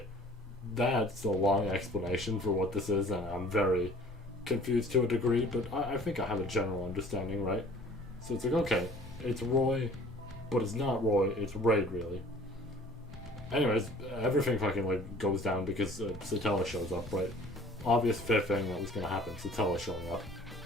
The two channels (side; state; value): both; normal; correlation 0.50